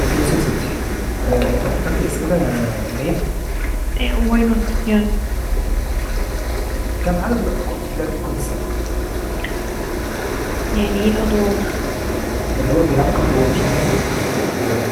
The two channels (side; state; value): both; identical; correlation 1.00